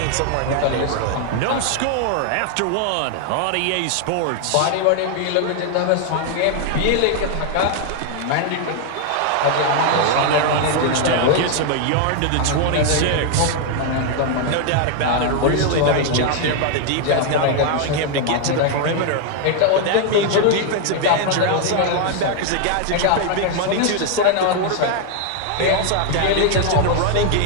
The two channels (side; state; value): both; different; correlation 0.00